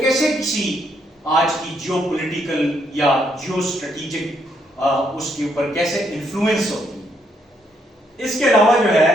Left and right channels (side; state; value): both; normal; correlation 0.74